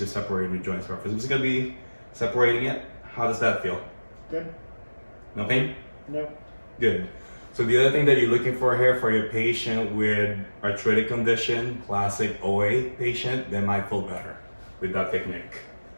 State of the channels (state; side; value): inverted; both; correlation -1.00